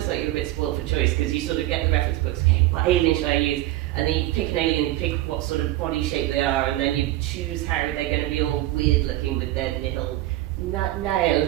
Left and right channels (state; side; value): quieter; left; 16.1 dB